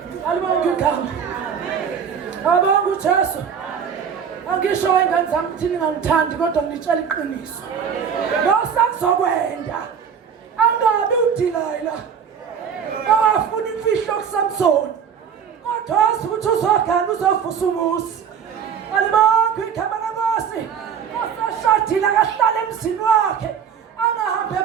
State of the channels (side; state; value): left; quieter; 7.4 dB